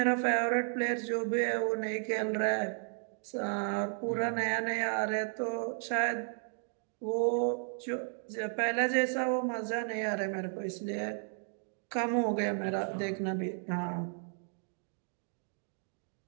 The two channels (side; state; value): left; silent; 55 dB below the other